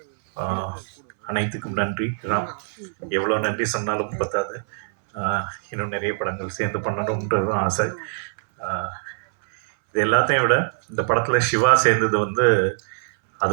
அனைத்துக்கும் நன்றி ராம். எவ்வளோ நன்றி சொன்னாலும் பத்தாது. இன்னும் நிறைய படங்கள் சேர்ந்து பண்ணணுன்றதும் ஆசை. இது எல்லாத்தையும் விட இந்த படத்தில் சிவா சேர்ந்தது வந்து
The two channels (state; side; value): silent; left; 63 dB below the other